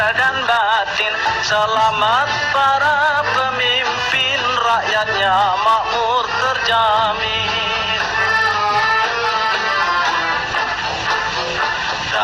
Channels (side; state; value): left; noise; hum, 29 dB below the sound